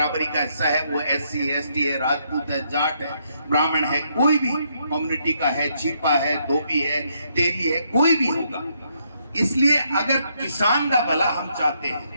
का हिस्सा है। वो SC ST है, राजपूत है, जाट है, ब्राह्मण है, कोई भी कम्युनिटी का है, छिपा है, धोबी है, तेली है, कोई भी होगा। इसलिए अगर किसान का भला हम चाहते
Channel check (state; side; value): inverted; both; correlation -0.74